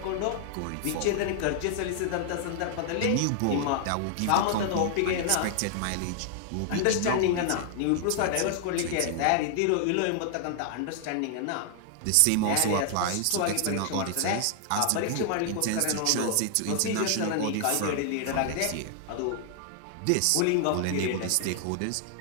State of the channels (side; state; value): both; different; correlation 0.00